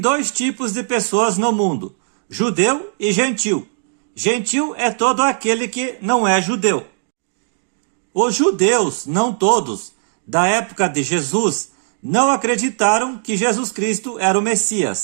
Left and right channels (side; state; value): left; silent; 67 dB below the other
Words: tipos de pessoas no mundo, judeu e gentil. Gentil é todo aquele que não é judeu. Os judeus, não todos, da época de Jesus, não acreditaram que Jesus Cristo era o